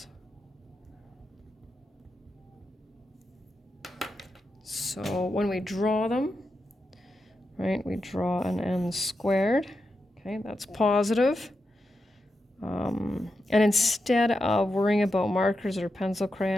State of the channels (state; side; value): normal; both; correlation 0.88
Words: So when we draw them, right, we draw an n squared. Okay, that's positive. And instead of worrying about markers or pencil